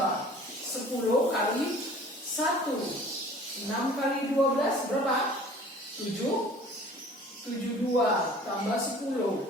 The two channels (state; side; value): normal; both; correlation 0.47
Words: 10 kali 1. 6 kali 12 berapa? 72 tambah